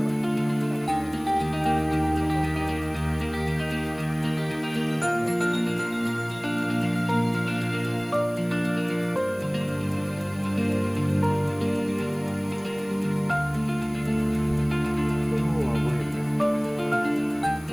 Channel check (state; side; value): noise; left; hiss, 24 dB below the sound